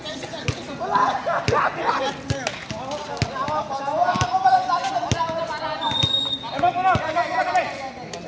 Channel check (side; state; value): both; identical; correlation 1.00